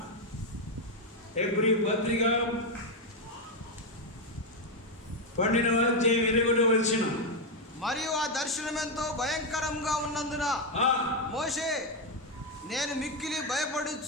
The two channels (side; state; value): both; normal; correlation 0.05